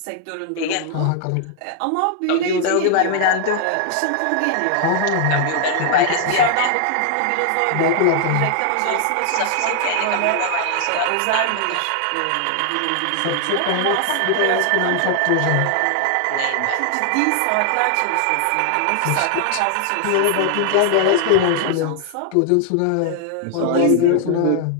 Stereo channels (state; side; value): different; both; correlation 0.00